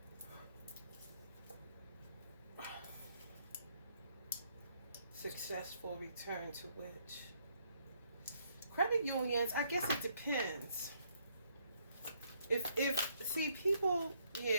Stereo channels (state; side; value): inverted; both; correlation -0.70